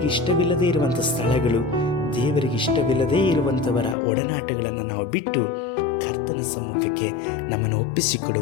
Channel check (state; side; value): drops out; right; at 4.0 s